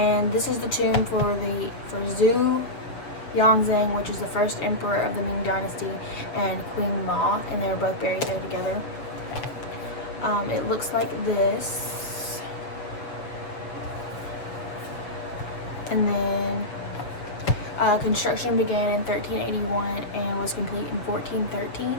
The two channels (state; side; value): late; right; 6.9 ms